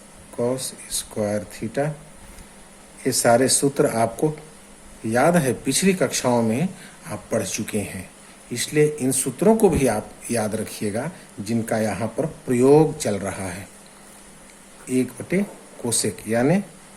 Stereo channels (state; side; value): identical; both; correlation 1.00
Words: कॉस स्क्वायर थीटा। ये सारे सूत्र आपको याद है, पिछली कक्षाओं में आप पढ़ चुके हैं, इसलिए इन सूत्रों को भी आप याद रखिएगा जिनका यहाँ पर प्रयोग चल रहा है। 1 बटे कोसेक यानी